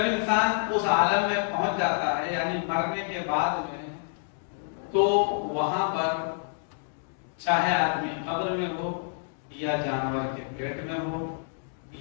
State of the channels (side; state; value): right; silent; digital silence